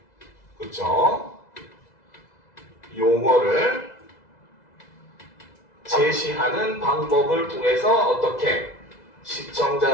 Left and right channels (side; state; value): right; late; 2.0 ms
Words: 그쵸? 용어를 제시하는 방법을 통해서 어떻게